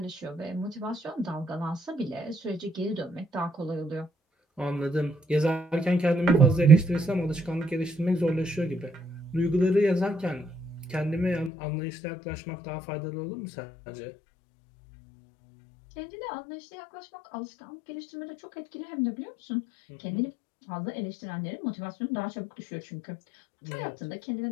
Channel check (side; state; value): right; drops out; at 11.5 s